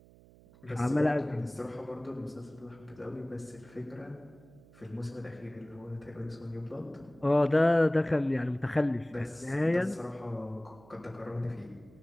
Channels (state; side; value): noise; right; hum, 24 dB below the sound